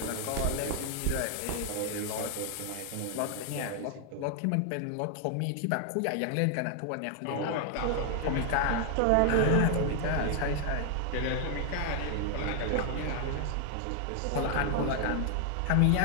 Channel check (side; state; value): both; different; correlation 0.00